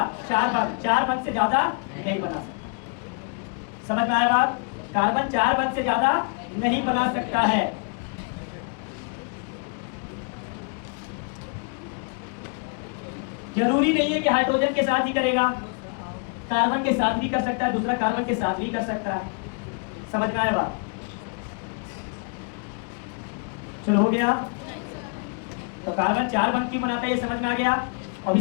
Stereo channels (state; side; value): quieter; right; 38.7 dB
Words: 4 बंध। 4 बंध से ज्यादा नहीं बना सकता। समझ में आया बात? कार्बन 4 बंध से ज्यादा नहीं बना सकता है। जरूरी नहीं है कि हाइड्रोजन के साथ ही करेगा, कार्बन के साथ भी कर सकता है, दूसरा कार्बन के साथ भी कर सकता है। समझ में आया बात? चलो हो गया। तो कार्बन 4 बंध क्यों बनाता है ये समझ में आ गया। और